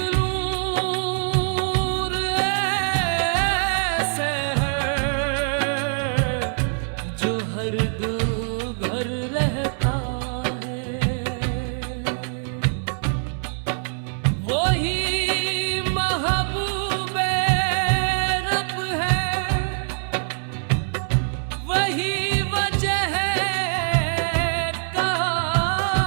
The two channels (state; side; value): silent; left; 63 dB below the other